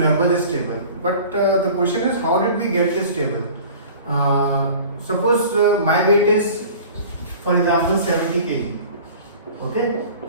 this table. But the question is, how did we get this table? Suppose my weight is, for example, 70 kg. Okay,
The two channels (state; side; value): inverted; both; correlation -0.43